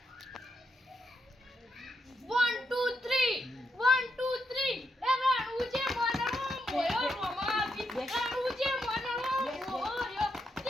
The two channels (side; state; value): both; normal; correlation 0.81